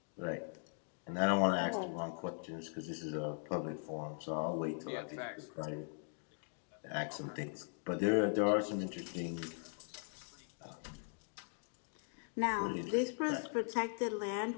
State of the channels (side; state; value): right; silent; 51 dB below the other